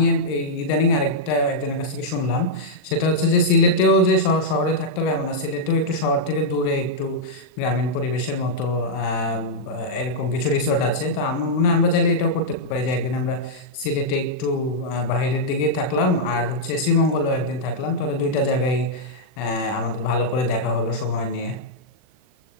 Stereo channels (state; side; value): late; right; 39 ms